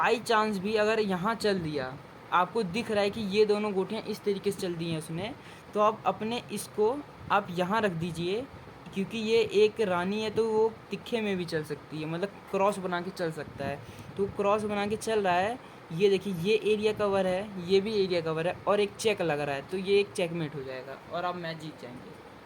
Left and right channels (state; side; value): identical; both; correlation 1.00